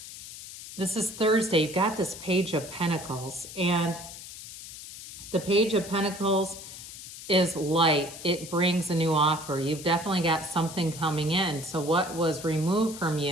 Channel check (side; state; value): left; noise; hiss, 13 dB below the sound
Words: this is Thursday, you've got this Page of Pentacles, and the Page of Pentacles is light. It brings a new offer. You've definitely got something coming in. So what was removed from